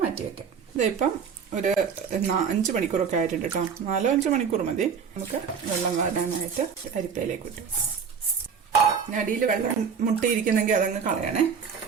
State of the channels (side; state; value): left; quieter; 6.6 dB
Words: മാറ്റി വെക്കാം. ഇതിപ്പം ഒരു 5 മണിക്കൂറൊക്കെ ആയിട്ടുണ്ട് കേട്ടോ. 4-5 മണിക്കൂർ മതി. നമുക്ക് വെള്ളം വാരാനായിട്ട് അരിപ്പയിലേക്ക് ഇട്ടു. അടിയിൽ വെള്ളം മുട്ടിയിരിക്കുന്നെങ്കിൽ അതങ്ങ് കളയണേ.